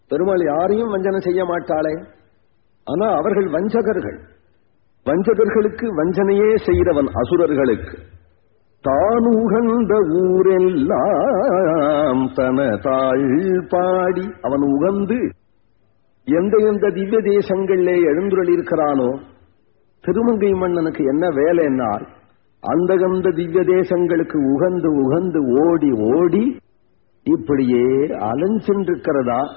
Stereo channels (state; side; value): silent; right; digital silence